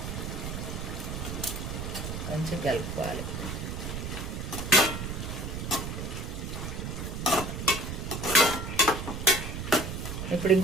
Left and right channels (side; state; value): right; noise; rumble, 5 dB below the sound